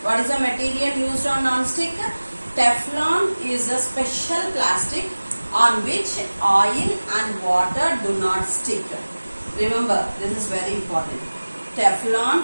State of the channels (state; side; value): inverted; both; correlation -1.00